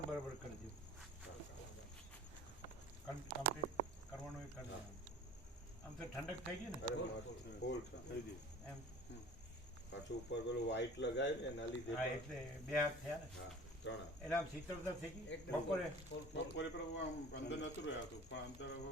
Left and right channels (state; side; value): normal; both; correlation 0.44